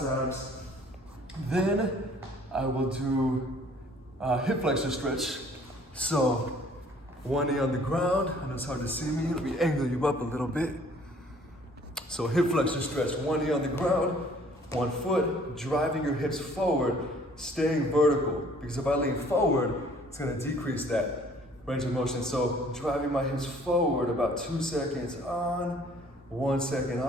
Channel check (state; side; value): normal; both; correlation 0.56